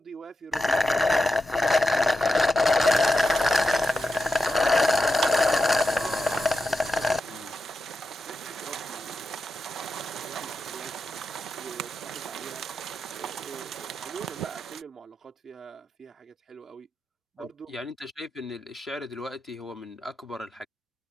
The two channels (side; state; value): both; normal; correlation 0.89